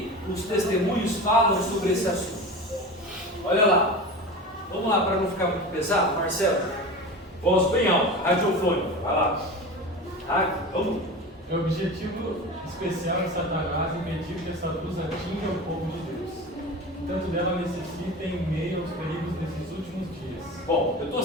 os testemunhos falam sobre esse assunto? Olha lá. Vamos lá, para não ficar muito pesado, Marcelo. Voz bem alta, radiofônica. Vai lá. Vamos. O objetivo especial de Satanás impedir que essa luz atinja o povo de Deus. Tanto dela necessita em meio aos perigos desses últimos dias. Bom, eu estou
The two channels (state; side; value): normal; both; correlation 0.30